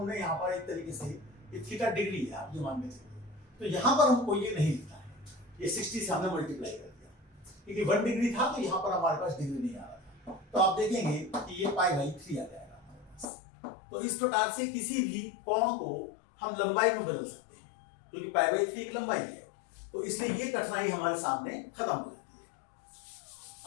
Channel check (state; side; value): drops out; right; at 13.2 s